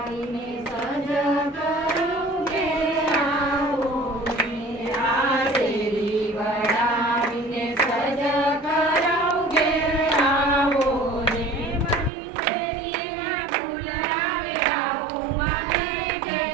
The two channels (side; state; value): left; drops out; at 12.1 s